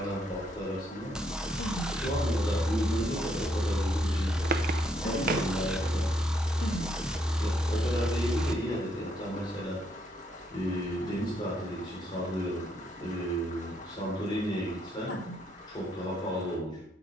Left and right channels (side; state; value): both; normal; correlation 0.73